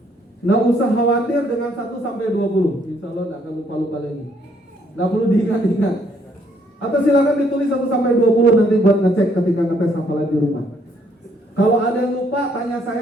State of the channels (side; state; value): both; normal; correlation 0.68